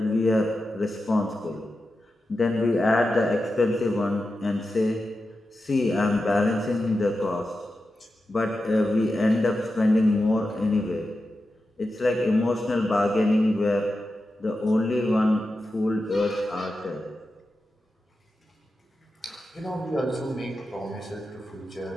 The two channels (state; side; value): normal; both; correlation 0.91